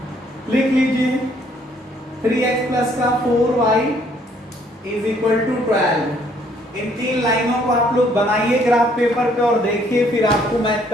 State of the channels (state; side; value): normal; both; correlation 0.65